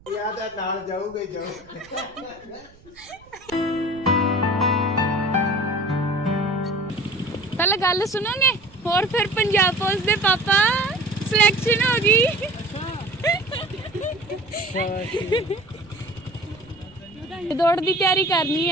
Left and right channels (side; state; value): right; noise; rumble, 26 dB below the sound